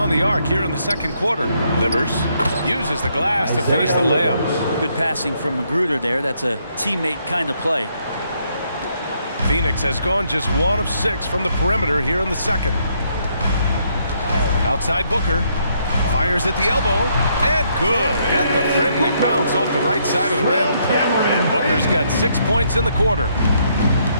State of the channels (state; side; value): inverted; both; correlation -0.72